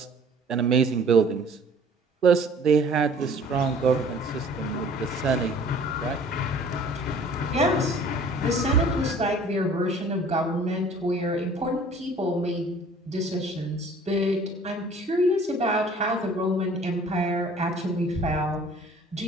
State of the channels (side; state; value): both; normal; correlation 0.51